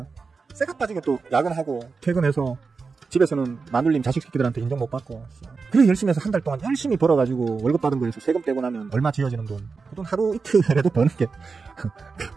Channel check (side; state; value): left; quieter; 4.7 dB